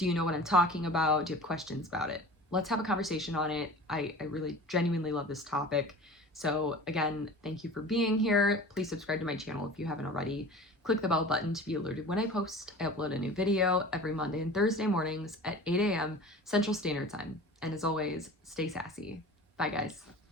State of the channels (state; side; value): normal; both; correlation 0.39